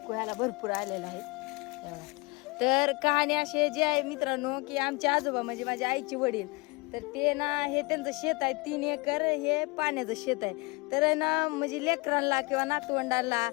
ह्याला भरपूर आलेला आहे. हे बघा. तर कहाणी अशी जी आहे मित्रांनो की आमचे आजोबा म्हणजे माझ्या आईचे वडील, तर ते ना हे त्यांचं शेत आहे 3 एकर. हे पाण्याचं शेत आहे. तर ना म्हणजे लेकरांना किंवा नातवंडांना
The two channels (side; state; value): right; quieter; 26.8 dB